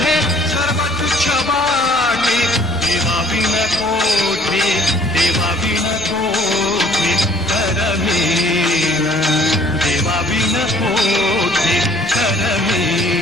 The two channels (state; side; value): normal; both; correlation 0.57